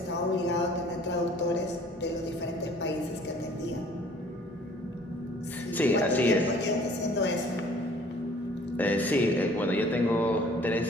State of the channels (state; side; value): normal; both; correlation 0.54